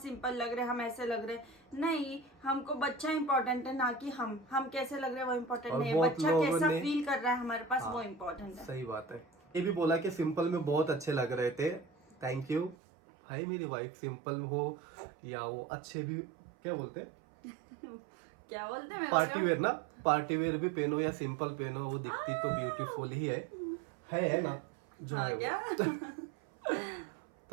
लग रहे, हम ऐसे लग रहे। नहीं, हमको बच्चा इम्पोर्टेंट है, ना कि हम कैसे लग रहे हैं वो इम्पोर्टेंट नहीं है, बच्चा कैसा फील कर रहा है हमारे पास वो इम्पोर्टेंट है। सही बात है। ये भी बोला कि सिंपल में बहुत अच्छे लग रहे थे, थैंक यू। भाई मेरी वाइफ सिंपल हो या वो अच्छे भी, क्या बोलते हैं क्या बोलते हैं, पार्टी वेयर ना, पार्टी वेयर भी पहनो या सिंपल पहनो, वो दिखती तो ब्यूटीफुल ही है ना जो हाँ, है क्या?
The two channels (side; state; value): left; drops out; at 12.8 s